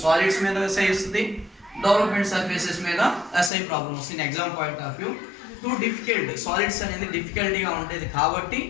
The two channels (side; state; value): right; drops out; at 3.5 s